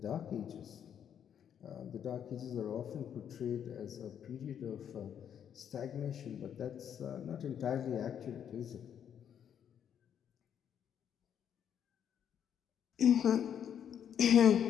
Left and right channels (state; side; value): quieter; right; 8.9 dB